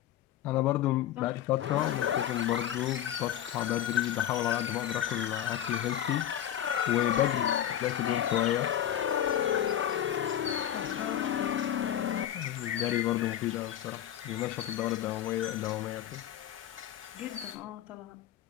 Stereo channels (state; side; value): quieter; right; 11.1 dB